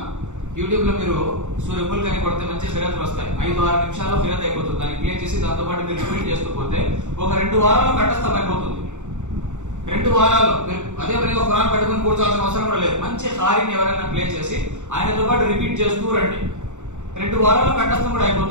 యూట్యూబ్ లో మీరు సూర్య ముల్క్ అని కొడితే మంచి ఫిర్యాదులు వస్తాయి. 5-6 నిమిషాల్లో ఫిర్యాదు అయిపోతుంది. దాన్ని క్లియర్ చేసి దాంతో పాటు మీరు రిపీట్ చేస్తూ పోతే ఒక 2 వారాల్లో కంఠస్థం అయిపోతుంది. 2 వారాల్లో మీరు అదే పనిగా ఖురాన్ పట్టుకుని కూర్చోవాల్సిన అవసరం కూడా లేదు. మంచి హారీని ఎవరైనా ప్లే చేసి ఆయనతో పాటు రిపీట్ చేస్తూ రండి. 2 వారాల్లో కంఠస్థం కూడా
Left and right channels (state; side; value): late; left; 0.84 ms